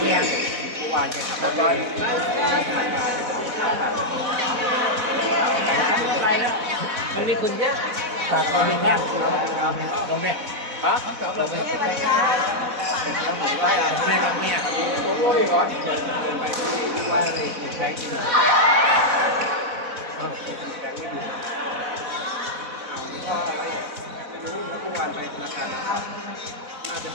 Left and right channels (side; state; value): left; late; 4.1 ms